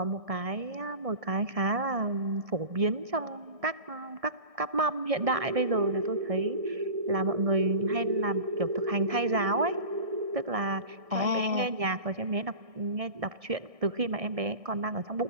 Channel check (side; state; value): left; late; 1.6 ms